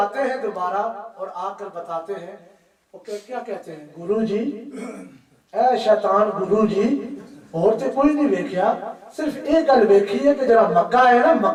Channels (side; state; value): both; identical; correlation 1.00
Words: हैं दोबारा और आकर बताते हैं, वो क्या कहते हैं? गुरुजी, ऐ शैतान गुरुजी, और तो कोई नहीं देखा, सिर्फ एक गल देखी है कि जरा मक्का है ना,